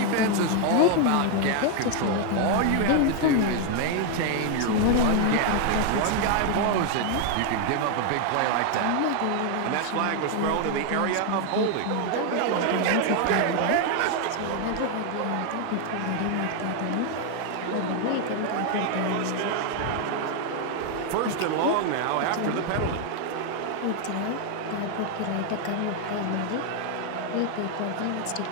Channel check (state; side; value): different; both; correlation 0.01